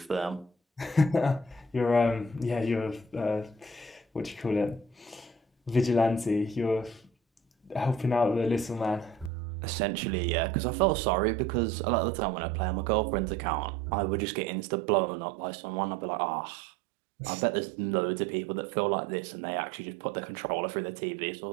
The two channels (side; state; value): left; drops out; at 9.3 s